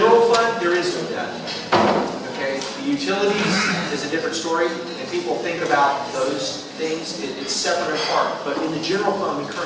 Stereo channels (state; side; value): identical; both; correlation 1.00